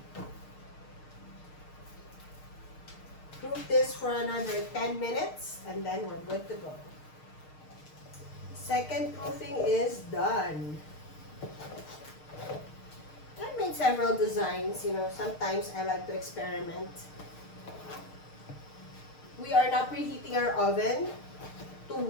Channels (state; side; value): late; right; 6.5 ms